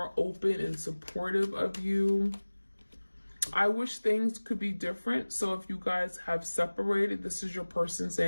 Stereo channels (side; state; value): both; inverted; correlation -1.00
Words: open and supportive of you. I wish things could be different. So if you guys have separated, this is your person